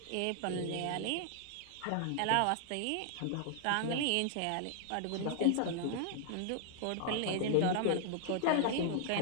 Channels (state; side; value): different; both; correlation 0.00